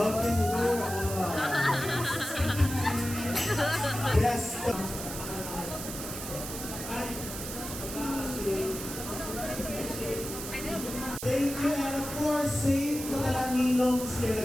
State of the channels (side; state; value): right; noise; hiss, 8 dB below the sound